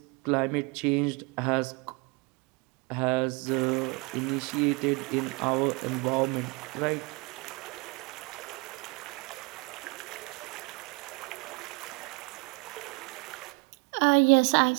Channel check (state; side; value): quieter; left; 28.8 dB